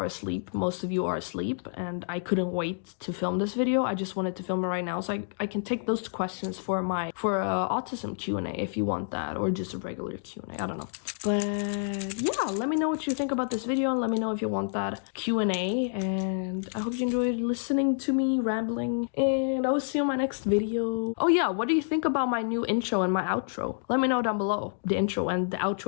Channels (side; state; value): right; silent; digital silence